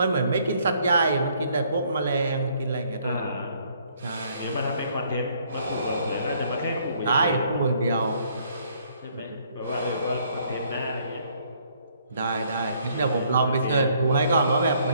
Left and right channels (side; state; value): both; inverted; correlation -0.65